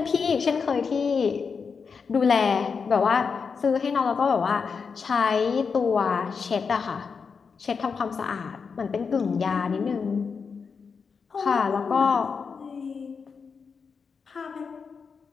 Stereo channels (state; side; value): quieter; right; 5.6 dB